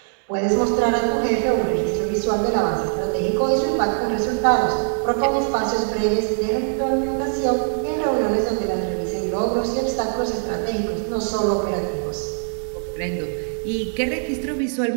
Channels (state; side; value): silent; left; 64 dB below the other